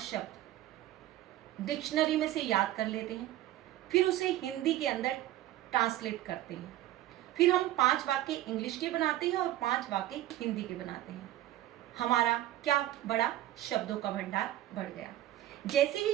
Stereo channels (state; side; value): quieter; left; 14.1 dB